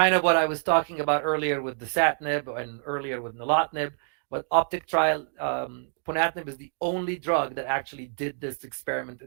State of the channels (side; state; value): left; silent; 60 dB below the other